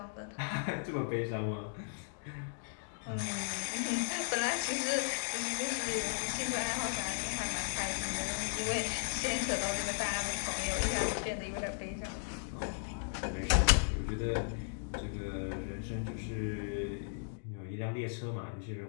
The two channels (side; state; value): right; silent; digital silence